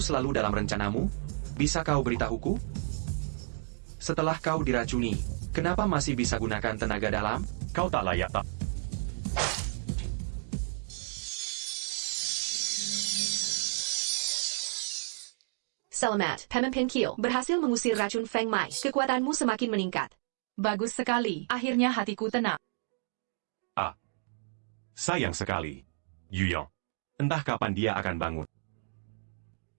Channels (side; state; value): left; silent; digital silence